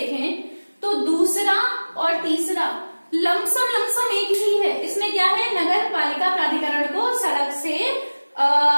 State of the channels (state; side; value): inverted; both; correlation -1.00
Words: तो दूसरा और तीसरा लमसम एक ही है। इसमें क्या है, नगर पालिका प्राधिकरण को सड़क से